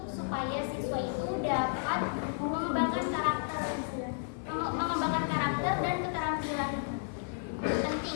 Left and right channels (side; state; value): right; silent; digital silence